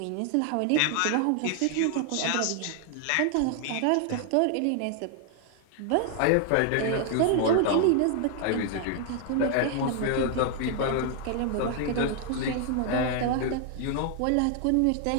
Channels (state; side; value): different; both; correlation 0.00